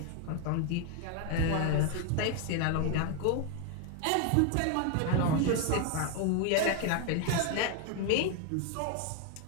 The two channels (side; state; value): both; different; correlation 0.01